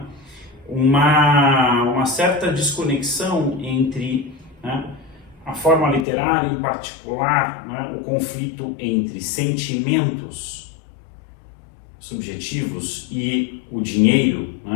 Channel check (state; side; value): drops out; right; at 6.1 s